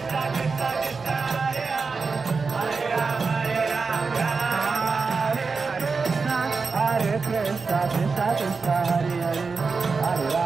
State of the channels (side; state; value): left; quieter; 4.6 dB